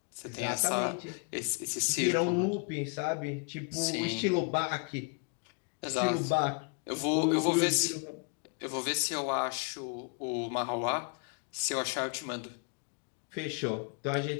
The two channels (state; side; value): quieter; right; 35.3 dB